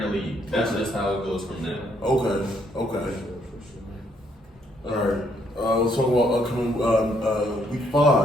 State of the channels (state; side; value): normal; both; correlation 0.70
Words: the league. That's just how it goes from now. Okay. All right. Let's talk about upcoming Week